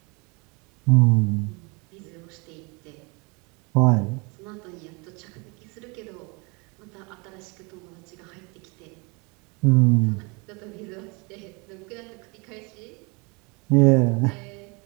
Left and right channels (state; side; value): quieter; left; 29.6 dB